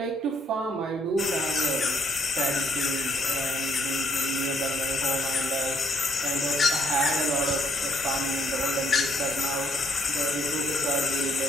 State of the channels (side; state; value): both; normal; correlation 0.69